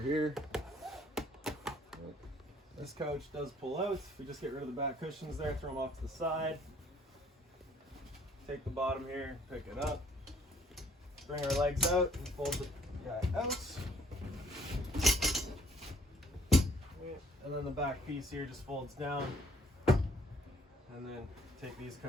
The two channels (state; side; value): normal; both; correlation 0.61